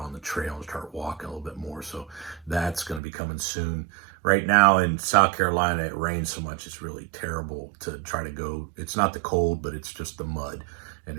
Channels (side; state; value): left; drops out; at 3.0 s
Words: the trail and start walking a little bit more. So that's going to be coming soon. Right now in South Carolina, it rains so much, it's really terrible to try to go. It's not the cold, but it's just the mud. And